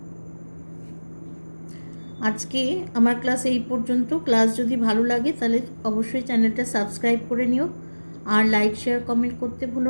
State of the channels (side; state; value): both; inverted; correlation -1.00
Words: আজকে আমার ক্লাস এই পর্যন্ত। ক্লাস যদি ভালো লাগে তাহলে অবশ্যই চ্যানেলটা সাবস্ক্রাইব করে নিও, আর লাইক শেয়ার কমেন্ট করতে